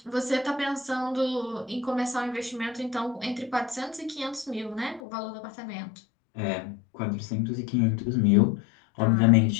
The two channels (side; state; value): right; drops out; at 5.0 s